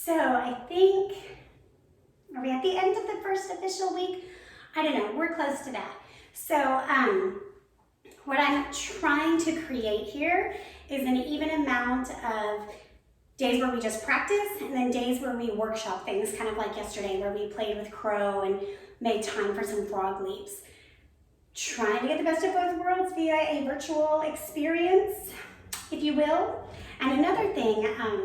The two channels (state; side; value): identical; both; correlation 1.00